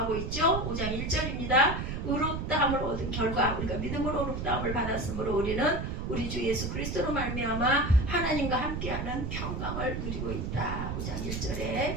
있죠. 5장 1절입니다. 의롭다함을 얻은 결과, 우리가 믿음으로 의롭다함을 받았으므로 우리는 우리 주 예수 그리스도로 말미암아 하나님과 함께하는 평강을 누리고 있다. 5장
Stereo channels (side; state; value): right; noise; rumble, 3 dB below the sound